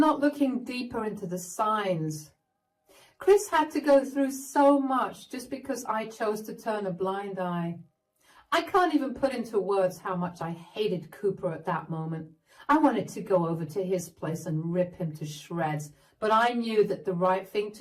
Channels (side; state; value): both; identical; correlation 1.00